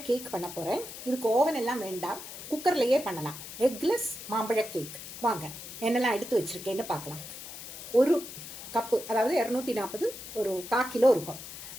கேக் பண்ண போறேன். இதுக்கு ஓவன் எல்லாம் வேண்டாம், குக்கர்லயே பண்ணலாம். எக்லெஸ் மாம்பழ கேக். வாங்க என்னெல்லாம் எடுத்து வச்சிருக்கேன்னு பார்க்கலாம். ஒரு கப்பு, அதாவது 240, ஒரு 1/4 கிலோ இருக்கும்.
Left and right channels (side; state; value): left; noise; hiss, 11 dB below the sound